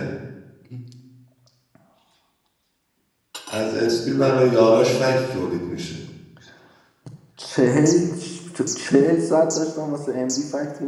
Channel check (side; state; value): both; identical; correlation 1.00